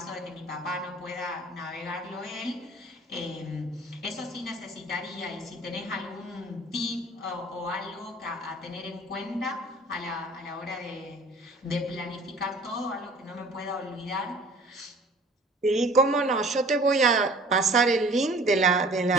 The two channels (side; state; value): both; normal; correlation 0.50